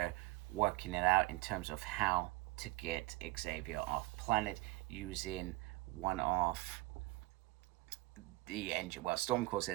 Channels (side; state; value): left; quieter; 20.9 dB